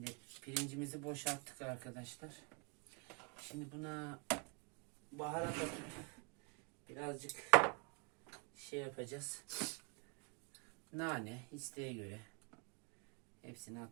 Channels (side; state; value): left; quieter; 33.9 dB